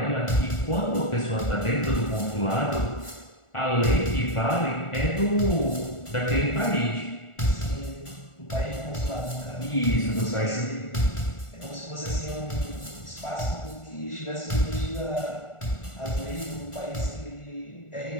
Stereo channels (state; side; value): late; right; 1.4 ms